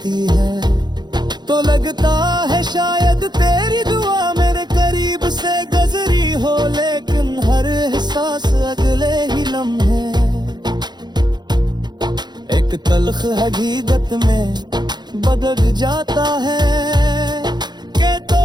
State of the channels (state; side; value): late; left; 0.21 ms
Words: है, तो लगता है शायद तेरी दुआ मेरे करीब से गुजरी हो, लेकिन हर एहसास अगले ही लम्हे एक तल्ख हकीकत में बदल जाता है, कि तो